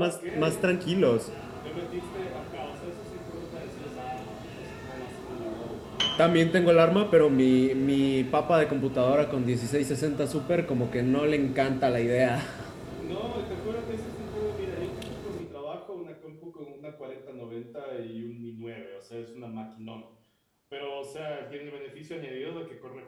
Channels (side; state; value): both; identical; correlation 1.00